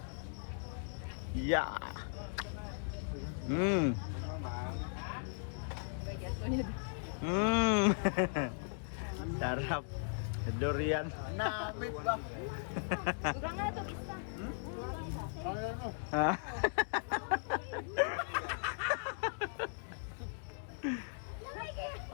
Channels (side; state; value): right; silent; digital silence